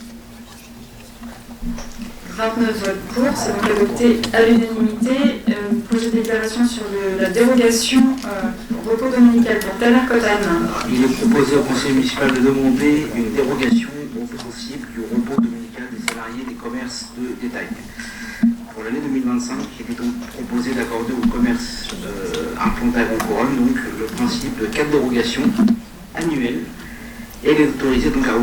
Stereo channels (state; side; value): identical; both; correlation 1.00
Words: 29 votes pour, c'est donc adopté à l'unanimité. Projet de délibération sur la dérogation au repos dominical pour Taner Cotane. Il est proposé au conseil municipal de demander une dérogation au principe du repos dominical des salariés des commerces de détail. Pour l'année 2025, il est donc proposé d'accorder au commerce implanté à Grand-Couronne donc le principe de 4 dérogations annuelles et les autoriser donc à